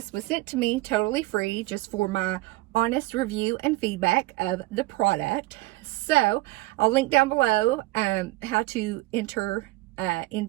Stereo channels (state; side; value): quieter; left; 19.9 dB